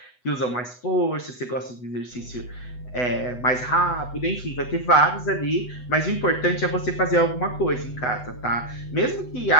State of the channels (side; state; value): right; late; 8.1 ms